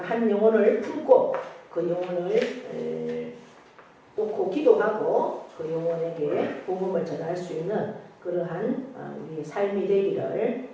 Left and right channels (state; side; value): identical; both; correlation 1.00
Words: 한 영혼을 품고 그 영혼을 놓고 기도하고 그 영혼에게 복음을 전할 수 있는 그러한 우리의 삶이 되기를